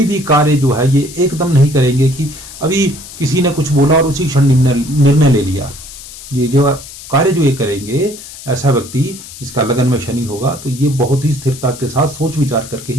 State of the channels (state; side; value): noise; left; hiss, 15 dB below the sound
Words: भी कार्य जो है ये एकदम नहीं करेंगे कि अभी किसी ने कुछ बोला और उसी क्षण निर्णय ले लिया। ये जो कार्य जो ये करेंगे, ऐसा व्यक्ति जिसका लगन में शनि होगा तो ये बहुत ही स्थिरता के साथ सोच विचार करके